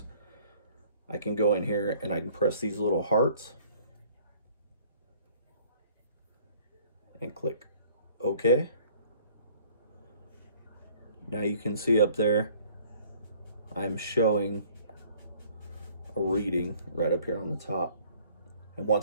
I can go in here and I can press these little hearts and click OK. Now you can see up there, I'm showing a reading right up here on the top. And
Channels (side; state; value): both; inverted; correlation -0.57